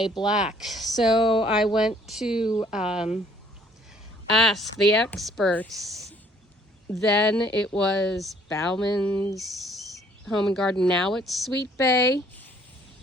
black. So I went to ask the experts. Then it was Bauman's Home and Garden. Now it's Sweet Bay.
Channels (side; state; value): both; normal; correlation 0.61